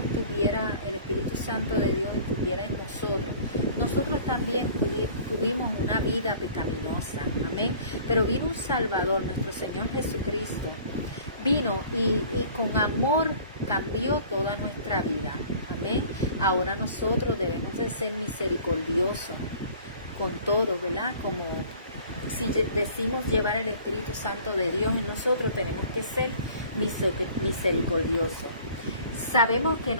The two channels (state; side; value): inverted; both; correlation -0.49